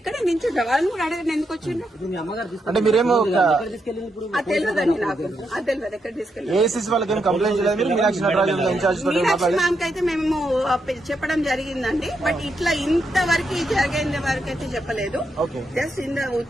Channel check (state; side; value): normal; both; correlation 0.81